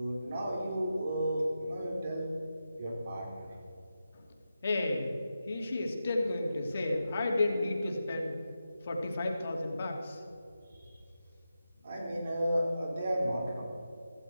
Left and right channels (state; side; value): inverted; both; correlation -0.90